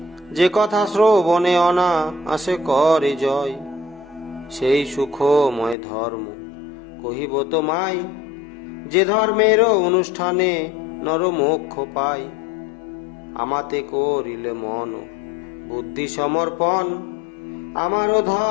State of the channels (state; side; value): drops out; right; at 5.8 s